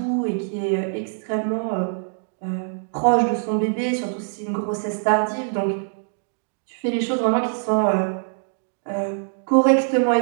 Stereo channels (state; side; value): silent; left; 63 dB below the other